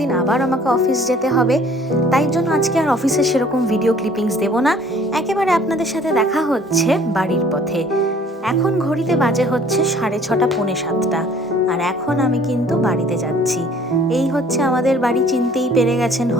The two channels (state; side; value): normal; both; correlation 0.54